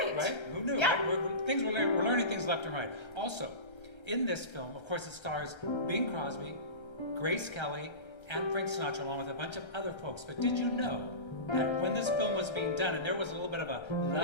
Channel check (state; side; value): late; right; 1.3 ms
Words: Right? Who knew? Yeah. Right? We're learning things left and right. Also, in this film, of course, it stars Bing Crosby, Grace Kelly, and Frank Sinatra, along with a bunch of other folks. But did you know that when this film was being done, and there was a little bit of a